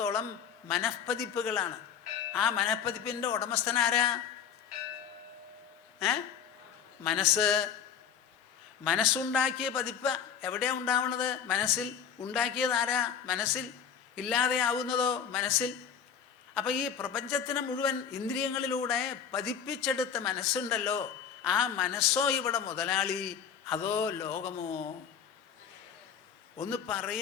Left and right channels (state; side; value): quieter; right; 7.8 dB